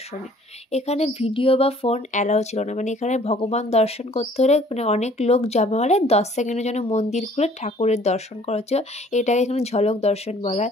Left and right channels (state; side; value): normal; both; correlation 0.56